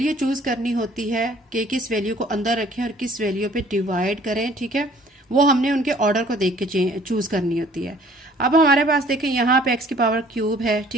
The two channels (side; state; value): both; normal; correlation 0.56